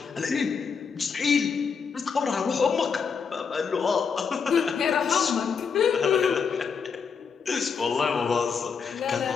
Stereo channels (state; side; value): quieter; right; 6.0 dB